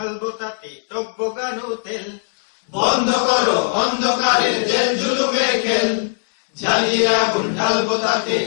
তাতে টকবগানো তেল বন্ধ করো অন্ধকারের জেল জুলুমের খেল জ্বালিয়ে আগুন ঢালবো তাতে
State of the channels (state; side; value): silent; right; 66 dB below the other